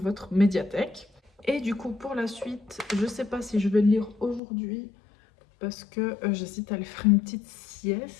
médiathèque. Et du coup, pour la suite, je ne sais pas si je vais le lire aujourd'hui parce que j'hésite à aller faire une petite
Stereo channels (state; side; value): drops out; right; at 4.4 s